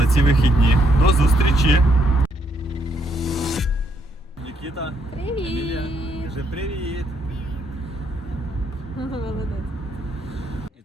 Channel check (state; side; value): normal; both; correlation 0.74